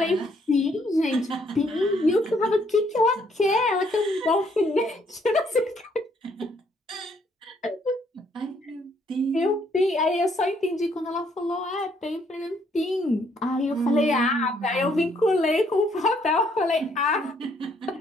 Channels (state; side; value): normal; both; correlation 0.68